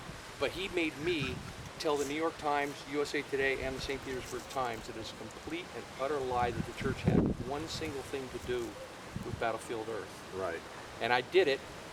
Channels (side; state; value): both; identical; correlation 1.00